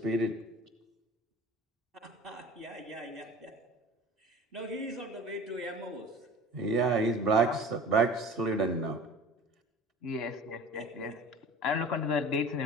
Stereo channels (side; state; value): both; normal; correlation 0.41